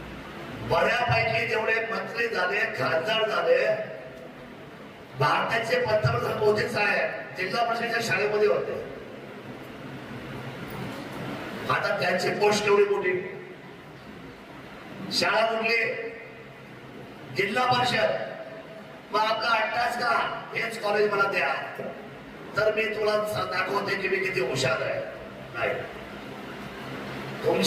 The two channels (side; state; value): both; identical; correlation 1.00